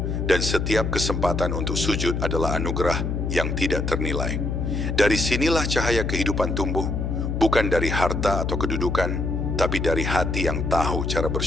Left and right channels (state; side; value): noise; left; hum, 1 dB below the sound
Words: dan setiap kesempatan untuk sujud adalah anugerah yang tidak ternilai. Dari sinilah cahaya kehidupan tumbuh, bukan dari harta atau kedudukan, tapi dari hati yang tahu cara